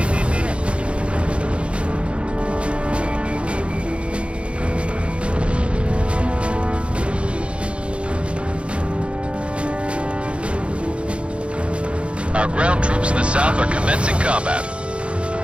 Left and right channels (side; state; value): left; late; 0.059 ms